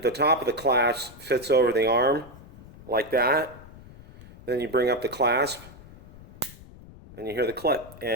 the top of the clasp fits over the arm like that. Then you bring up the clasp and you hear the clip,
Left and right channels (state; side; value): noise; left; rumble, 19 dB below the sound